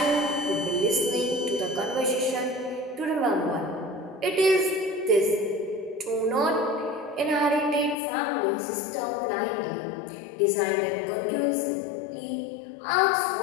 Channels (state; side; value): drops out; right; at 8.0 s